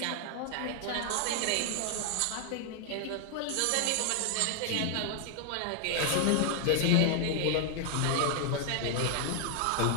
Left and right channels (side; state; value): both; different; correlation 0.00